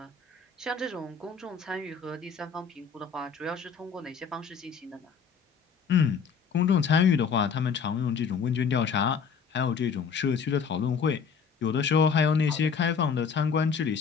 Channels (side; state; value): right; quieter; 6.2 dB